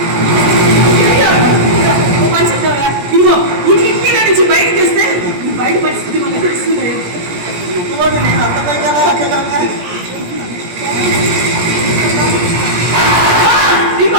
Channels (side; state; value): left; late; 17 ms